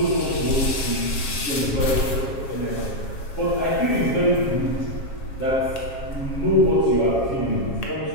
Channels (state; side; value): late; right; 7.3 ms